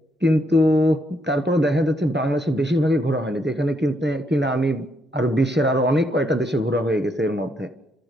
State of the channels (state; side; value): normal; both; correlation 0.75